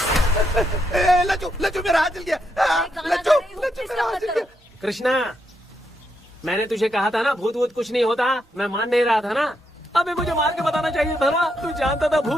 लच्चू लच्चू मेरा हाथ जल गया। लच्चू लच्चू मेरा हाथ जल गया। कृष्णा, मैंने तुझे कहा था ना भूत वूत कुछ नहीं होता, मैं मान नहीं रहा था ना। अबे मुझे मार के बताना चाहिए था ना, तू जानता था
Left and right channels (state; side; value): normal; both; correlation 0.80